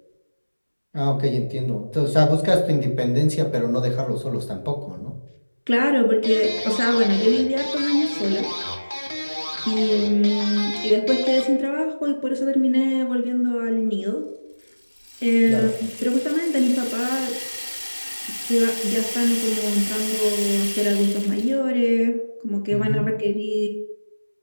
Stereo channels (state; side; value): inverted; both; correlation -1.00